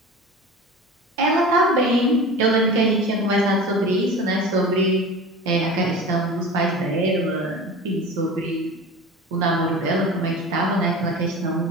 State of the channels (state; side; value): normal; both; correlation 0.34